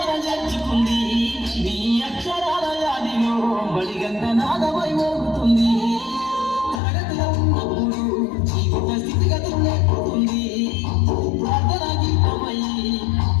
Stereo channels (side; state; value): right; drops out; at 6.8 s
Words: చేర్చుకుంది. నీ అక్షరాల వ్యాధిలో బడిగంట నాదమై మోగుతుంది. తరగతిలో ఉన్నప్పుడు జీవిత స్థితిగతులు నేర్పుతుంది. ప్రార్థన గీతమై